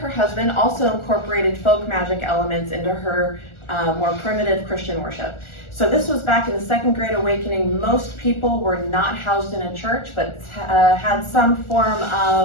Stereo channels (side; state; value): right; late; 1.4 ms